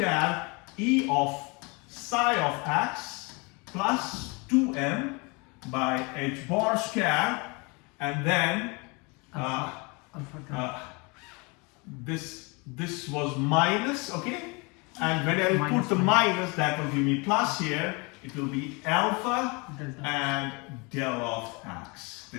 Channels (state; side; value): quieter; right; 29.3 dB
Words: e of psi of x plus 2m by h bar square, and then this was minus, okay, and when I put the minus, that will give me plus here. It will be alpha and del of x.